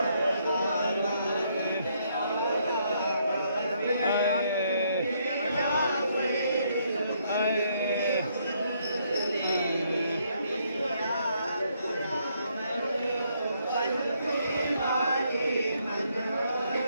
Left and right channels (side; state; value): both; inverted; correlation -0.72